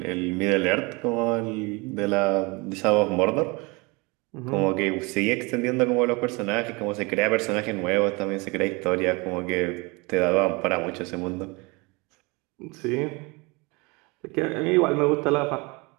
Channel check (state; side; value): quieter; left; 26.8 dB